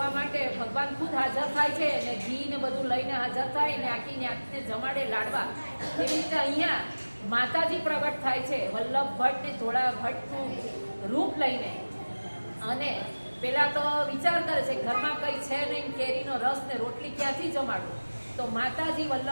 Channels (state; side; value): inverted; both; correlation -1.00